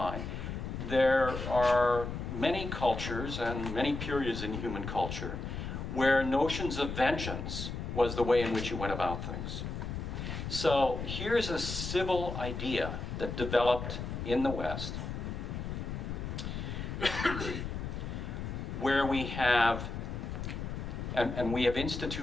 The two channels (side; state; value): left; noise; rumble, 5 dB below the sound